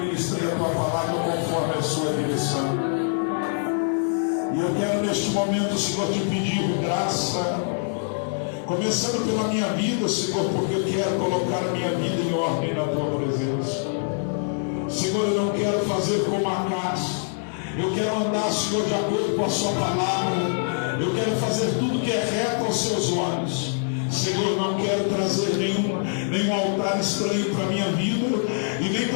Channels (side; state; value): right; silent; digital silence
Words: a tua palavra conforme a sua direção. E eu quero neste momento, Senhor, te pedir graça, começando pela minha vida, Senhor, porque eu quero colocar a minha vida em ordem na tua presença. Senhor, eu não quero fazer como Acás. Eu quero andar, Senhor, de acordo com a sua palavra. Eu quero fazer tudo que é reto aos seus olhos. Senhor, eu não quero trazer nenhum altar estranho para a minha vida, e nem